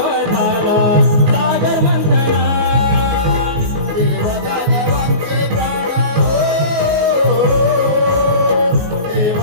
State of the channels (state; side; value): late; left; 19 ms